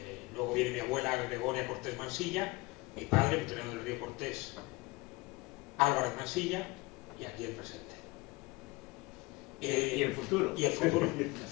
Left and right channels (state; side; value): quieter; right; 23.0 dB